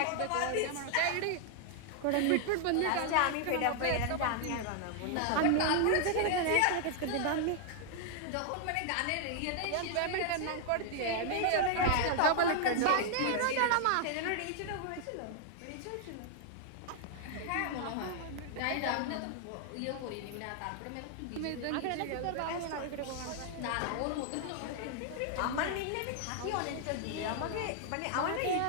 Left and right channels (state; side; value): different; both; correlation 0.00